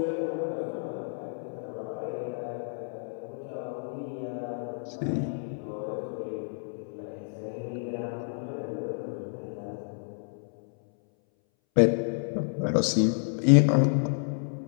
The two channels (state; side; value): silent; right; 58 dB below the other